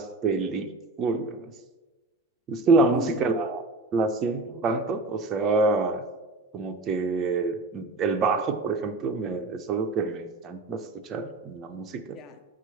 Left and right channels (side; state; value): left; quieter; 3.1 dB